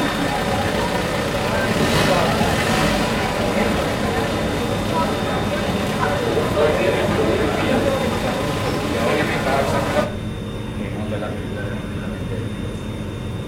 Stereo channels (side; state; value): both; identical; correlation 1.00